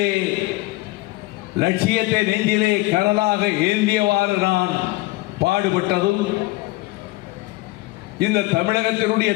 லட்சியத்தை நெஞ்சிலே கனலாக ஏந்தியவாறு நான் பாடுபட்டதும், இந்த தமிழகத்தினுடைய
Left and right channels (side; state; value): right; quieter; 20.2 dB